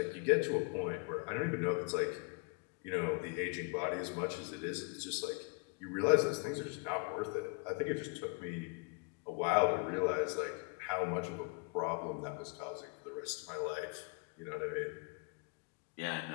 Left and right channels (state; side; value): quieter; right; 35.5 dB